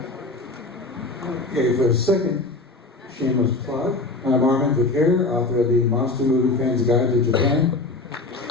Okay, for a second shameless plug, I'm Armin Vicaire, author of the Monster Movie Fans Guide to Japan.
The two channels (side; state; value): right; quieter; 3.2 dB